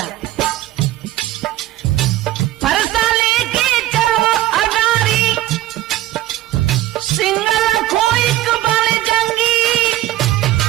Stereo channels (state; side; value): quieter; left; 15.1 dB